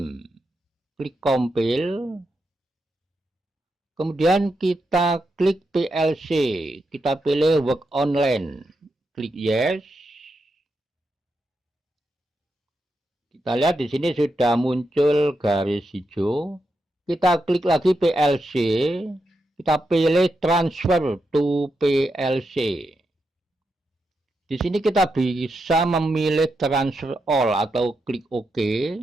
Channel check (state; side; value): normal; both; correlation 0.85